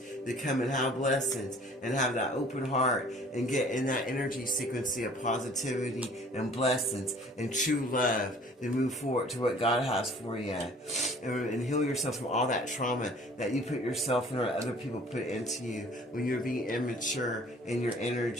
to come and have blessings and have that open heart and get in that energy frequency of positivity and blessings and true love to move forward to what God has for you, and heal yourself from all that trauma that you put yourself in or other people put into you when you're being immature in your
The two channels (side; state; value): both; normal; correlation 0.51